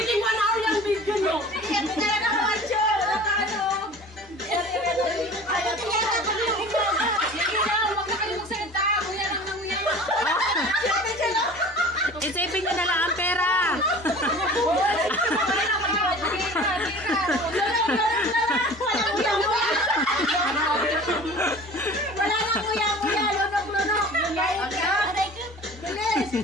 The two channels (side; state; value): both; normal; correlation 0.42